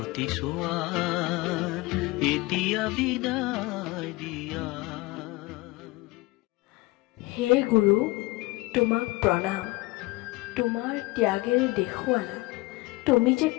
চোৱাৰ এতিয়া বিদায় দিয়া। হে গুৰু, তোমাক প্ৰণাম। তোমাৰ ত্যাগেৰে দেখুৱালা তুমি যে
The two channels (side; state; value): right; quieter; 21.9 dB